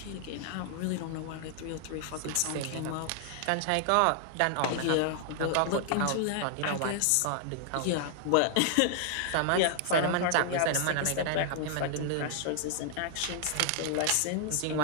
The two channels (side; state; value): both; different; correlation 0.00